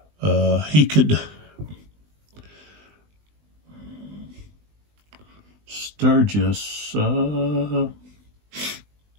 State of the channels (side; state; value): left; late; 20 ms